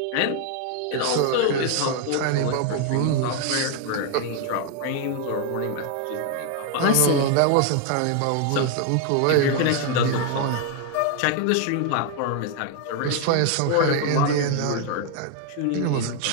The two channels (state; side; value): different; both; correlation 0.00